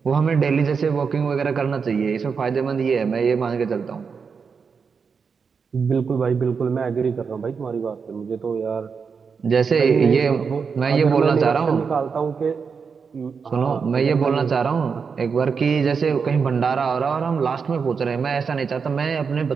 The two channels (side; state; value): left; quieter; 5.7 dB